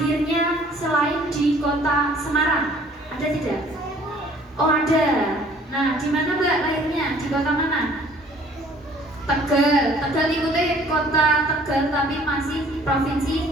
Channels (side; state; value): both; normal; correlation 0.55